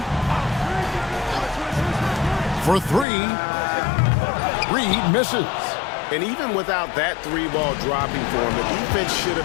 For three, Reed misses. And even without that three-ball dropping for him, the defense should have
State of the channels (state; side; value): drops out; right; at 3.1 s